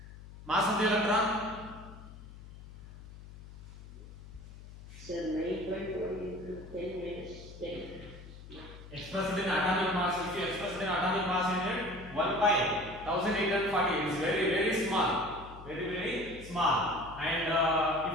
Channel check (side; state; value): left; noise; hum, 16 dB below the sound